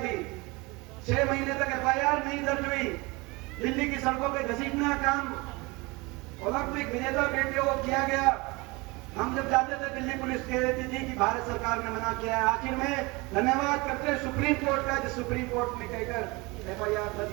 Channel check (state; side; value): quieter; left; 24.9 dB